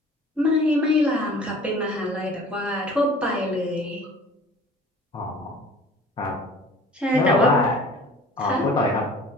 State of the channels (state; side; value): normal; both; correlation 0.47